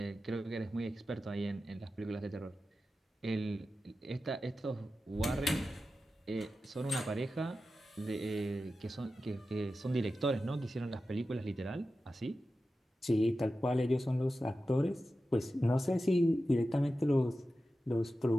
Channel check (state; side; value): normal; both; correlation 0.93